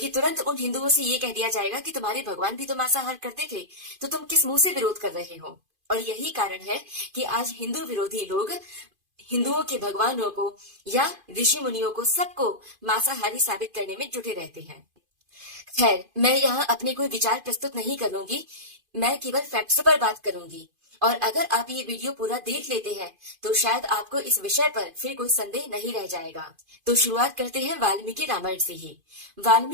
तुरंत उन हिंदुओं से ये कह दिया जाएगा कि तुम्हारे भगवान भी तो मांसाहार करते थे, तो तुम किस मुंह से विरोध कर रहे हो? और यही कारण है कि आज हिंदू विरोधी लोग हिंदुओं के भगवानों को या ऋषि मुनियों को सबको मांसाहारी साबित करने में जुटे रहते हैं। खैर, मैं यहाँ अपने कोई विचार प्रस्तुत नहीं करूंगी, मैं केवल फैक्ट्स पर बात करूंगी। और अगर आप ये वीडियो पूरा देख लेते हैं तो शायद आपको इस विषय पर फिर कोई संदेह नहीं रह जाएगा। तो शुरुआत करते हैं वाल्मीकि रामायण से ही।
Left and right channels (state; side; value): late; left; 2.5 ms